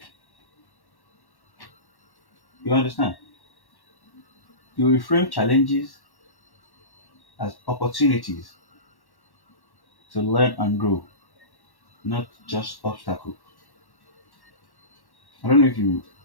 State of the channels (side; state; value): right; late; 1.1 ms